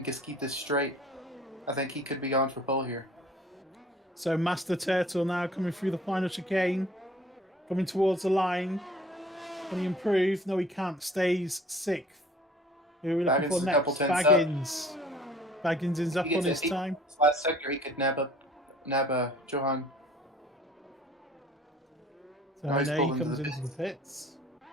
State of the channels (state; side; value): normal; both; correlation 0.51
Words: just keep this straight, I think he could be on for pole here. So Master Turtle now coming through the final chicane, coming towards the line. Can he improve? No, he can't. Stays 6th. Who are we looking for next? Baggins. Baggins is up on his time. This last sector, he could nab Johan. So now he comes into the pits.